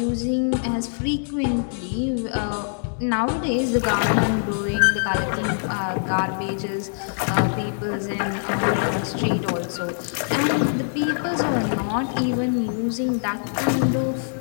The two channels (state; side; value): silent; right; digital silence